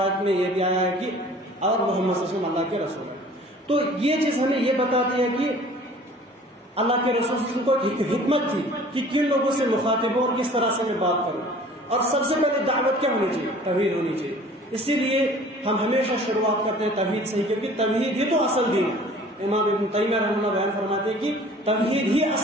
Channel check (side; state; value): both; normal; correlation 0.48